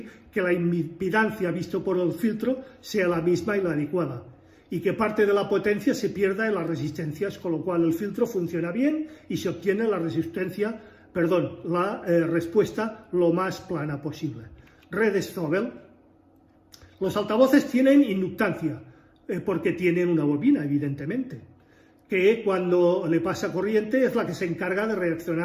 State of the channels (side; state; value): both; identical; correlation 1.00